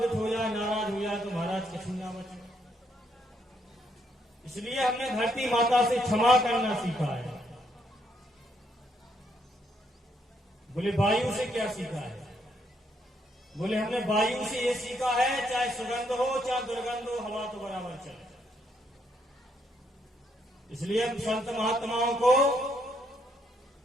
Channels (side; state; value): both; normal; correlation 0.74